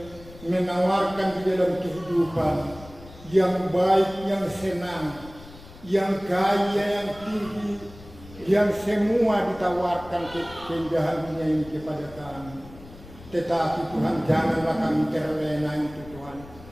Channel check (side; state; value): left; noise; rumble, 19 dB below the sound